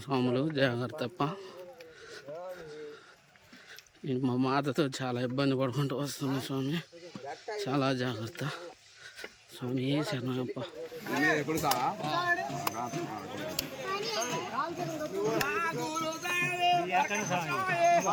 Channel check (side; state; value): both; identical; correlation 1.00